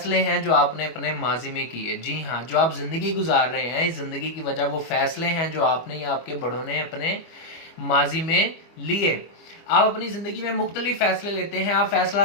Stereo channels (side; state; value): right; late; 25 ms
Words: हैं जो आपने अपने माजी में किए। जी हाँ, जो आप ज़िंदगी गुजार रहे हैं, इस ज़िंदगी की वजह वो फ़ैसले हैं जो आपने या आपके बड़ों ने अपने माजी में लिए। आप अपनी ज़िंदगी में मुख्तलिफ फ़ैसले लेते हैं। आप फ़ैसला